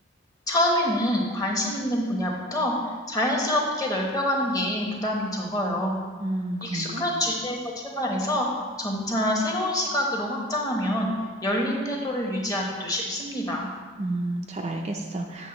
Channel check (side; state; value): both; normal; correlation 0.39